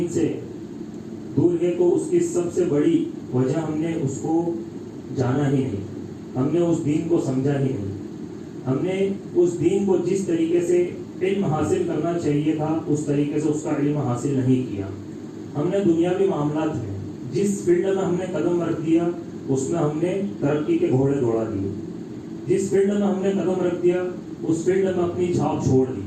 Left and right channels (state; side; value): identical; both; correlation 1.00